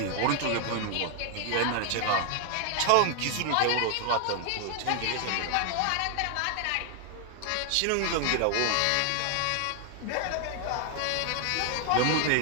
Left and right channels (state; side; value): different; both; correlation 0.00